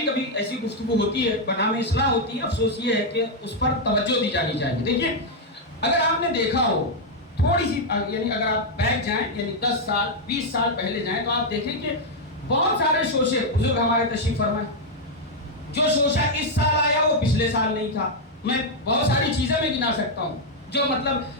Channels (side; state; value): both; normal; correlation -0.01